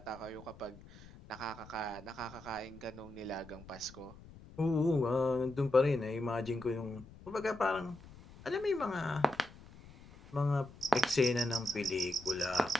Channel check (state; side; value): noise; left; rumble, 19 dB below the sound